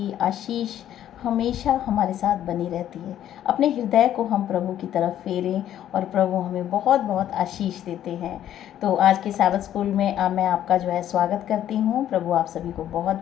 आशीष हमेशा हमारे साथ बनी रहती है। अपने हृदय को हम प्रभु की तरफ फेरें और प्रभु हमें बहुत बहुत आशीष देते हैं। तो आज के सैबथ स्कूल में मैं आपका जो है स्वागत करती हूँ। प्रभु आप सभी को बहुत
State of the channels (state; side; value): quieter; right; 11.4 dB